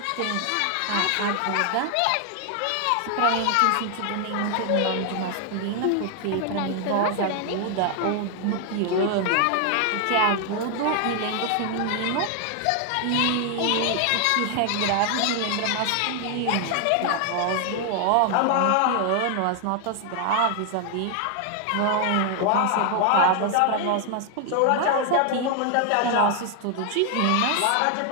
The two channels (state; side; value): different; both; correlation 0.00